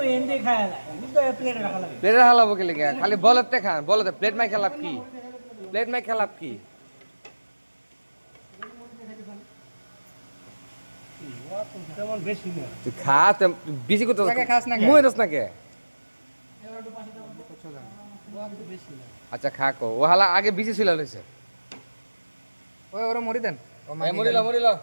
এন্ডে খায় না কিন্তু প্লেটে রাখা লাগে প্লেটে হালাবো কি লাগে? খালি বলতে খান, বলতে প্লেট মাই খেলাপ কি? প্লেট মাই খেলাপ কি? তেমন বেশি না তুই খা, বেশি করতে খাস না কে? মুই দস না কে? বেশি না আচ্ছা খা কো, ও হালা আগে বেশি ছিল লইছে। ওই ওরা মরি দেন ও এ মরিলা মরিলা।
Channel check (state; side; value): inverted; both; correlation -1.00